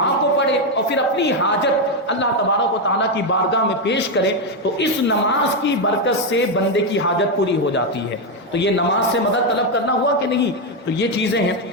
کو پڑھے اور پھر اپنی حاجت اللہ تبارک و تعالیٰ کی بارگاہ میں پیش کرے، تو اس نماز کی برکت سے بندے کی حاجت پوری ہو جاتی ہے۔ تو یہ نماز سے مدد طلب کرنا ہوا کہ نہیں؟ تو یہ چیزیں ہیں۔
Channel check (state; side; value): normal; both; correlation 0.05